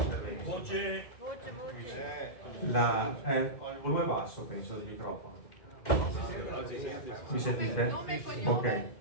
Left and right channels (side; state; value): right; late; 2.5 ms